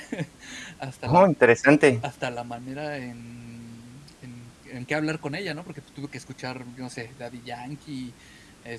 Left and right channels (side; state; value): both; identical; correlation 1.00